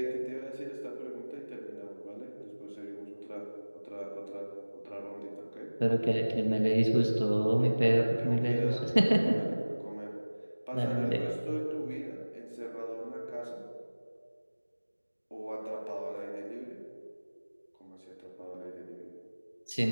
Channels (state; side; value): inverted; both; correlation -1.00